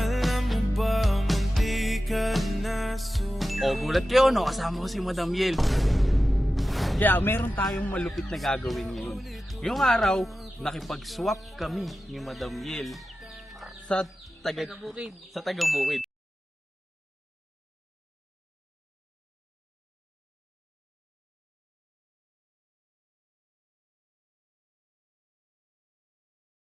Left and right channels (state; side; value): normal; both; correlation 0.94